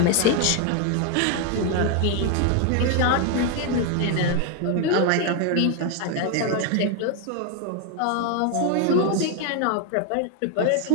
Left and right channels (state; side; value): different; both; correlation 0.01